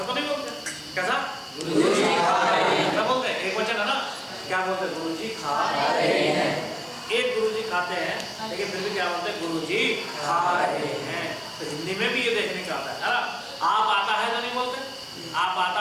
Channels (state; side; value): identical; both; correlation 1.00